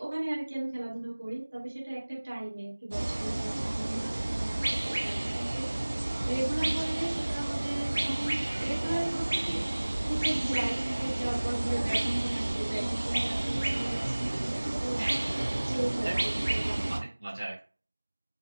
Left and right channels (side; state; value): both; inverted; correlation -1.00